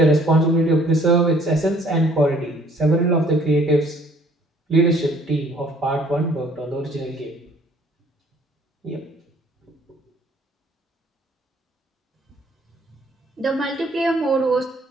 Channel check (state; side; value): normal; both; correlation 0.59